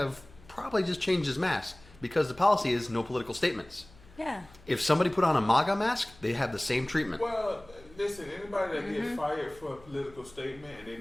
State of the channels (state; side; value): noise; left; hum, 24 dB below the sound